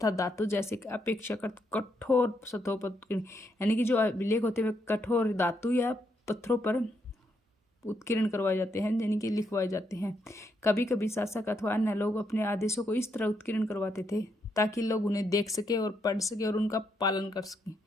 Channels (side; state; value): both; normal; correlation 0.78